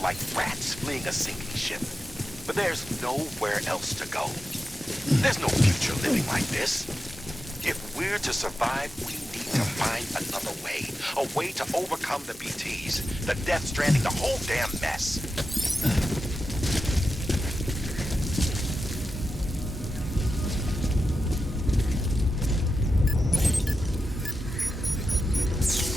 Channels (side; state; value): both; normal; correlation 0.90